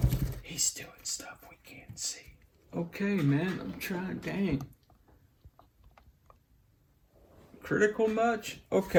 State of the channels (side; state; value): both; identical; correlation 1.00